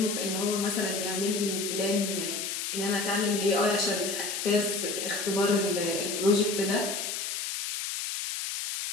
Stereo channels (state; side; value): noise; left; hiss, 3 dB below the sound